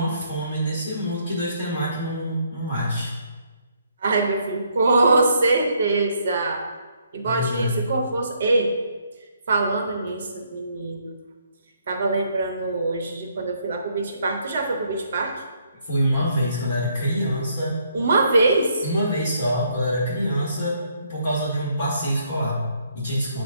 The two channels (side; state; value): both; inverted; correlation -0.70